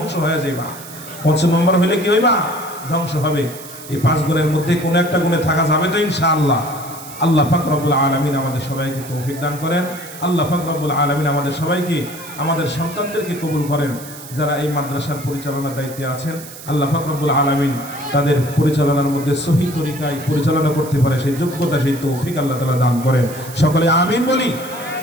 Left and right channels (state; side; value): noise; right; hiss, 15 dB below the sound